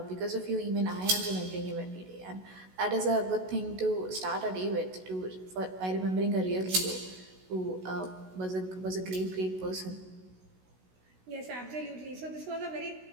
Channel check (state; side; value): late; left; 16 ms